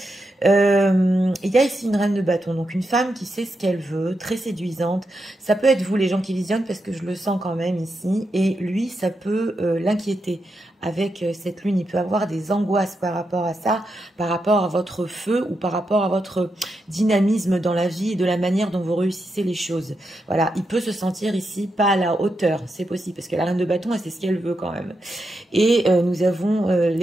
Il y a ici une reine de bâton, donc une femme qui sait ce qu'elle veut, très séduisante. Ça peut être vous, les gens qui visionnent, parce que je le sens quand même ici. Et lui, ça peut l'inquiéter. Avec cette lune, il peut avoir des angoisses par rapport à ça, par rapport à votre feu ou par rapport à votre dynamisme dans la vie et de la manière dont vous réussissez les choses. Voilà, il peut se sentir ici pas à la hauteur, c'est possible, parce que la reine de bâton, elle sait ce qu'elle veut quand même. Et nous avons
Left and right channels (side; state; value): both; normal; correlation 0.85